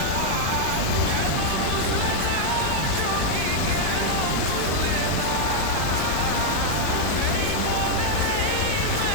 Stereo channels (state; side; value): different; both; correlation -0.01